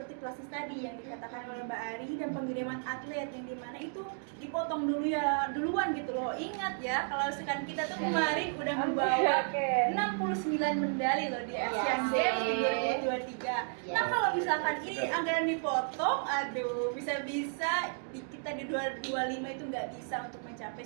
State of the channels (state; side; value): silent; left; 56 dB below the other